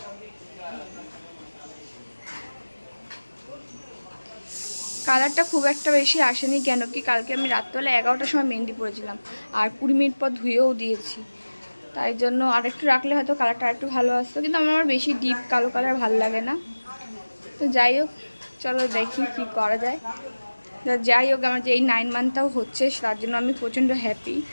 কালারটা খুব একটা বেশি আসেনি, কেন কি কালকে আমি রাত্রবেলা 11টার সময় মেহেন্দি পরেছিলাম, আর 20 মিনিট পর ধুয়েও দিয়েছি। তাই জন্য আর একটু রাখলে হয়তো কালারটা একটু ভালো আসতো, কিন্তু আমার বেশি ডিপ কালো কালার ভালো লাগে না। তো যাই হোক, চলো দেখি কি করা যায়। যাই হোক, আমার যে এই 9 মান্থটাও হচ্ছে তার জন্য আমি প্রচণ্ড হ্যাপি।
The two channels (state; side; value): inverted; both; correlation -1.00